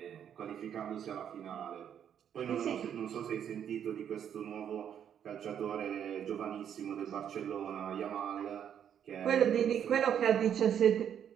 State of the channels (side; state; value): left; quieter; 9.0 dB